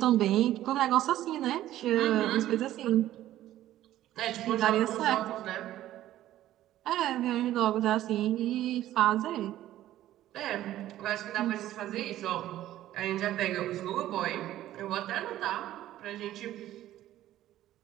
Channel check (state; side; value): quieter; left; 13.6 dB